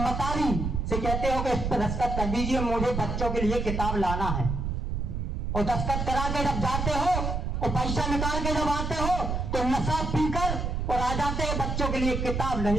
से कहते हो कि इस पर दस्तखत कर दीजिए, मुझे बच्चों के लिए किताब लाना है, और दस्तखत करा के जब जाते हो और पैसा निकाल के जब आते हो तो नशा पीकर और आ जाते हो, बच्चों के लिए किताब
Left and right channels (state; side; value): noise; right; rumble, 2 dB below the sound